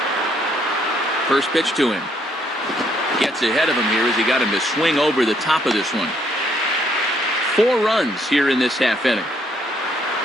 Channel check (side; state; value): both; normal; correlation 0.69